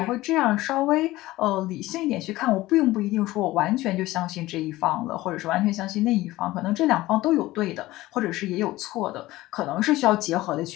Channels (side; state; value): right; quieter; 17.7 dB